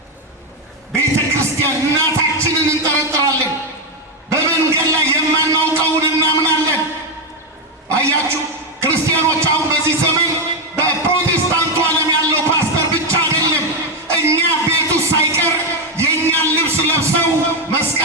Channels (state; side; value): normal; both; correlation 0.06